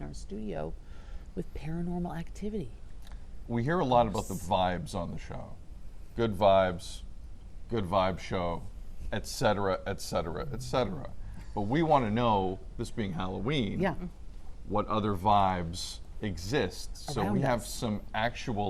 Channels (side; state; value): both; identical; correlation 1.00